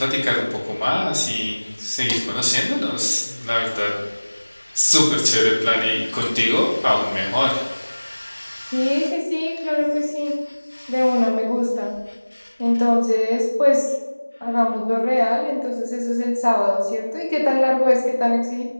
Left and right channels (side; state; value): both; inverted; correlation -1.00